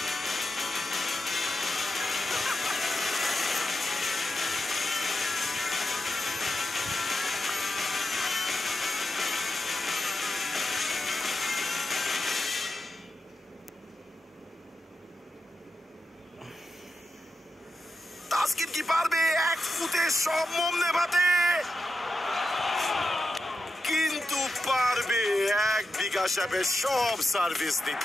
তাসকিন কি পারবে এক ফুটে সব মোম নেভাতে? কিন্তু পারবে এক বিকাশ অ্যাপে সব সার্ভিস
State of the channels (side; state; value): both; normal; correlation 0.88